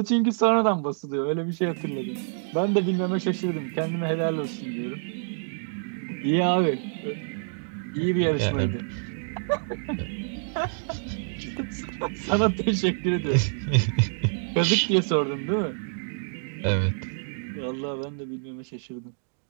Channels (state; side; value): silent; left; digital silence